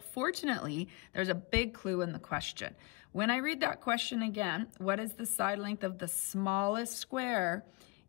fortunately, there's a big clue in the question. When I read that question again, what is the side length of the smallest square?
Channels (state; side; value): quieter; right; 24.5 dB